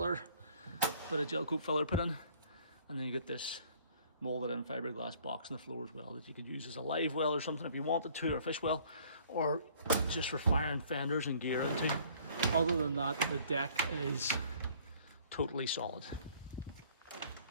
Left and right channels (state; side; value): inverted; both; correlation -0.56